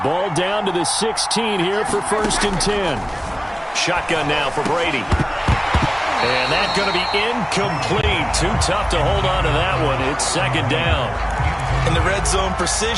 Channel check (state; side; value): identical; both; correlation 1.00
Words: ball down to the 16 here for 1st and 10. Shotgun now for Brady. And that's going to be incomplete. Too tough to hold on to that one. It's second down. In the red zone,